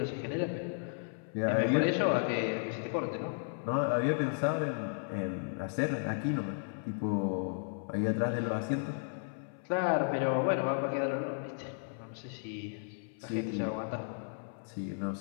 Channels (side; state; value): right; silent; 55 dB below the other